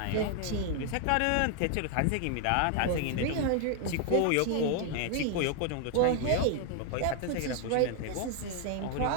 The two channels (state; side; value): different; both; correlation 0.00